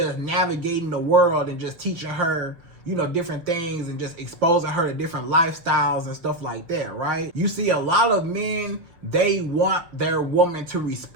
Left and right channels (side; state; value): left; late; 6.0 ms